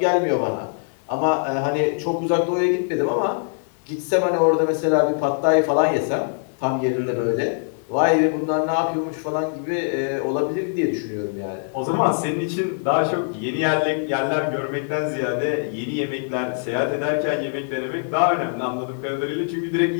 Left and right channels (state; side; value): silent; right; 64 dB below the other